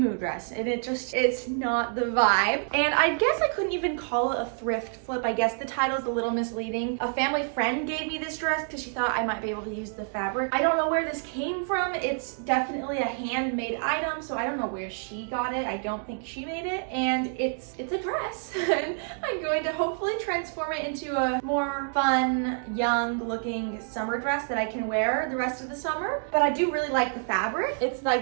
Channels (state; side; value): silent; left; 60 dB below the other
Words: dress, and it's not the vibe. And I guess I couldn't even call it a thrift flip. I guess the title is a little misleading. A family friend gave me this dress because she thought I might be able to use the fabric. I don't know where this came from. It's definitely a handmade item, so I don't know where she got it. I don't think she made it, and it's a dress. And I'm going to hopefully transform it into a more fun, young looking summer dress that I can wear the rest of the summer. But I do really like the fabric. It's